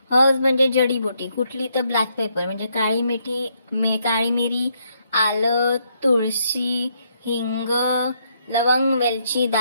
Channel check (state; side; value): inverted; both; correlation -0.75